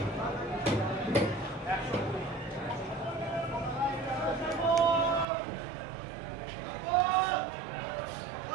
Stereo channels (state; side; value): drops out; left; at 5.2 s